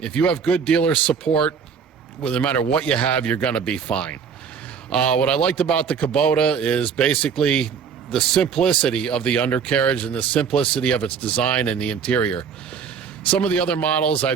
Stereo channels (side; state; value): left; quieter; 6.6 dB